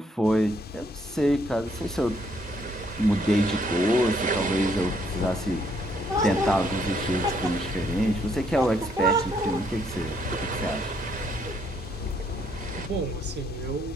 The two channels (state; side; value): normal; both; correlation 0.70